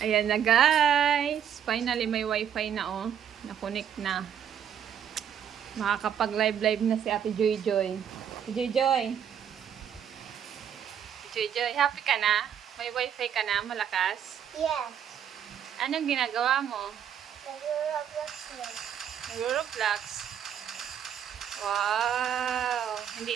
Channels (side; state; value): left; quieter; 9.0 dB